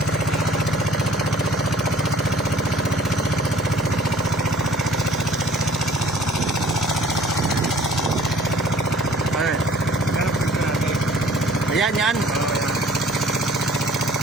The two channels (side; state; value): both; normal; correlation 0.53